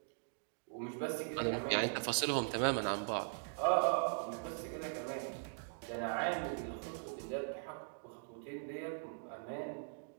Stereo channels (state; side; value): silent; left; digital silence